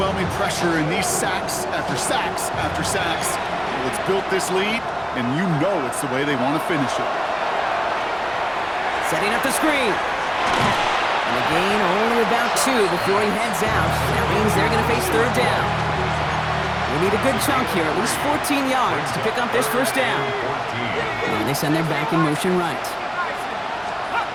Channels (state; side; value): identical; both; correlation 1.00